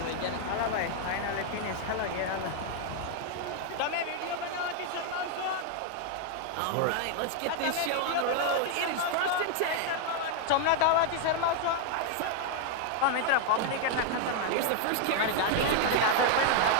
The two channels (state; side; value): different; both; correlation 0.00